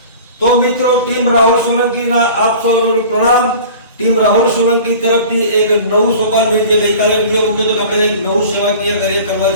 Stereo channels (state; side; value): inverted; both; correlation -0.41